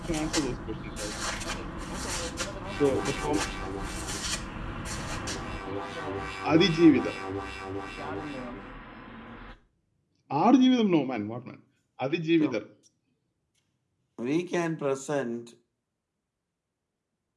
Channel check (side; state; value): both; identical; correlation 1.00